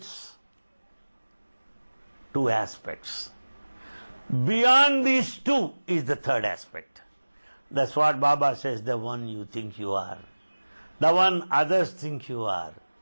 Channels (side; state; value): both; inverted; correlation -1.00